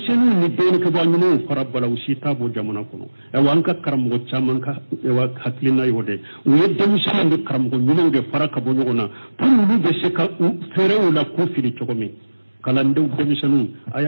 ni dɔɔninkɛbaa ɲumanw fara bala u si t'a bɔ jamana kɔnɔ ɛwa an ka karamɔgɔ caman ka hakilina y'o de u ye denmisɛnninw ni karamɔgɔ ɲumanw de fara ka bɔ ɲɔgɔn na pour olu bɛ se ka fɛɛrɛw la k'u fili cogo min kalandenw denmisɛnninw a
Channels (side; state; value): both; inverted; correlation -1.00